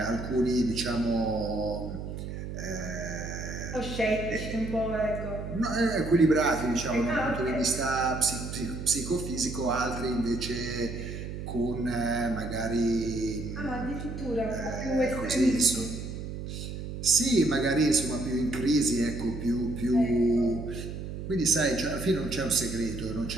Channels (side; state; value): right; noise; hum, 7 dB below the sound